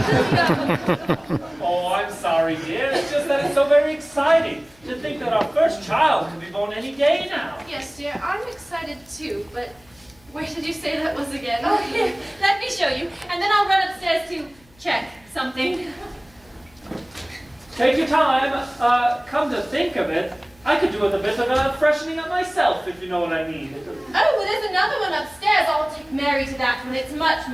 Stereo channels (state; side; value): noise; left; hum, 29 dB below the sound